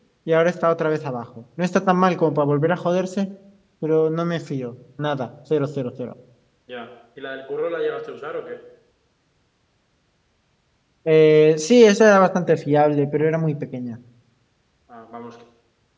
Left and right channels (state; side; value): identical; both; correlation 1.00